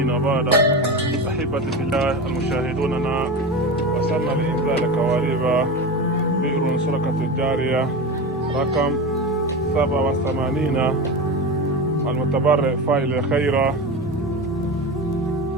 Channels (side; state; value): both; normal; correlation 0.24